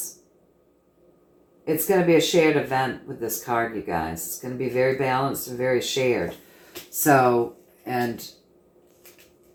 It's going to be a shared event with this card, you guys. It's going to be very balanced and very shared. So, and,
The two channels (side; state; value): both; identical; correlation 1.00